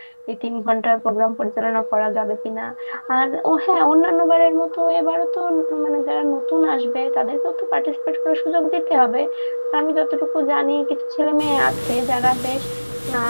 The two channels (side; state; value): both; inverted; correlation -1.00